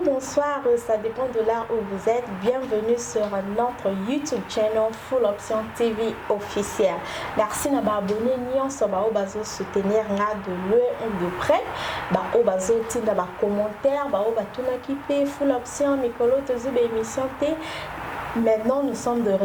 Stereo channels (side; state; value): both; identical; correlation 1.00